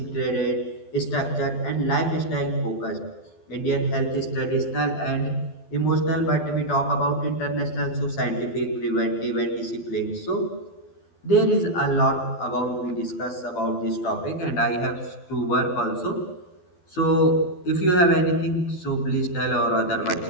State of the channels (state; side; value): late; right; 11 ms